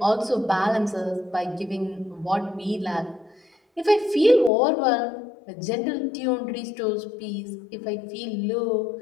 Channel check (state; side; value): drops out; right; at 4.5 s